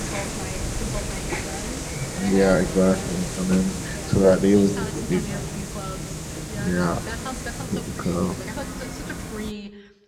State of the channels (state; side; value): identical; both; correlation 1.00